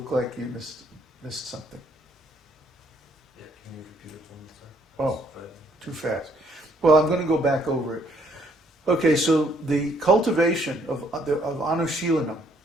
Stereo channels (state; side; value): normal; both; correlation 0.67